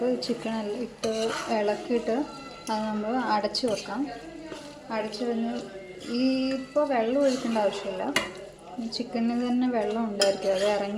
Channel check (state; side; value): identical; both; correlation 1.00